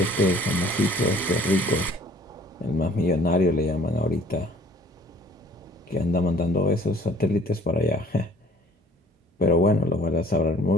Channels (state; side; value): normal; both; correlation 0.55